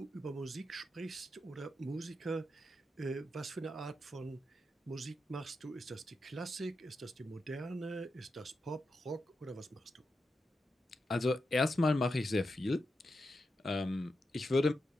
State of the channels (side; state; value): both; normal; correlation 0.87